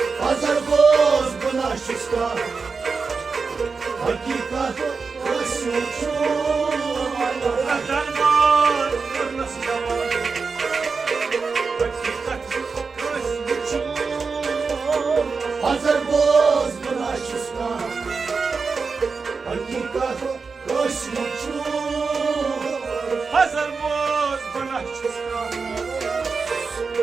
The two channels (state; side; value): quieter; left; 4.8 dB